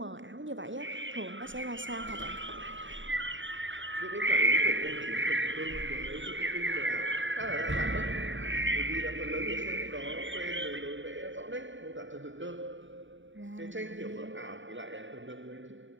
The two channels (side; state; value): left; late; 0.55 ms